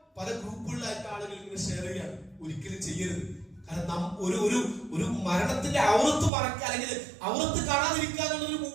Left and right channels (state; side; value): drops out; left; at 6.3 s